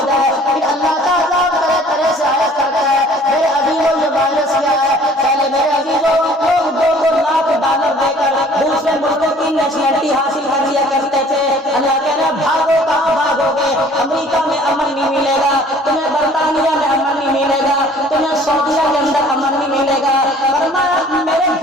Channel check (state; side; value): normal; both; correlation 0.53